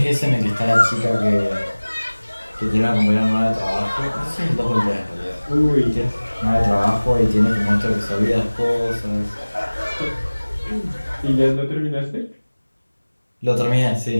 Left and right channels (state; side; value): inverted; both; correlation -1.00